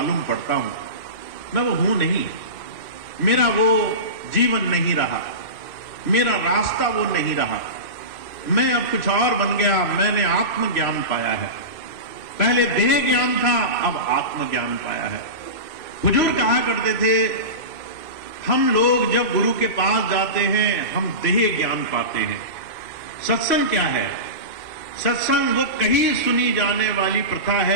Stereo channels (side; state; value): right; late; 3.0 ms